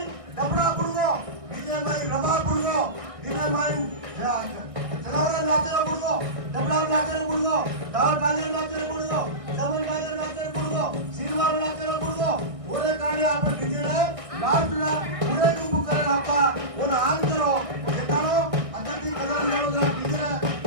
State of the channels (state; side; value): late; left; 1.6 ms